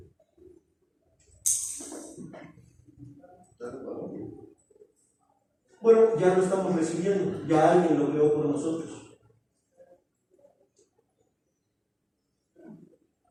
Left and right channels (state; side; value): identical; both; correlation 1.00